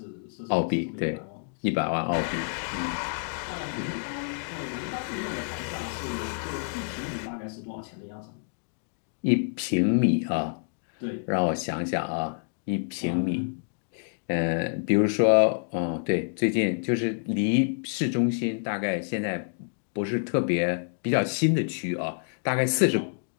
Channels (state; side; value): silent; right; digital silence